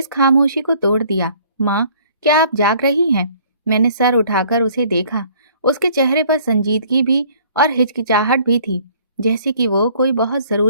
खामोशी को तोड़ दिया। माँ, क्या आप जाग रही हैं? मैंने सर उठाकर उसे देखा। उसके चेहरे पर संजीदगी भी और हिचकिचाहट भी थी, जैसे कि वो कोई बहुत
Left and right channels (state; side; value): inverted; both; correlation -0.57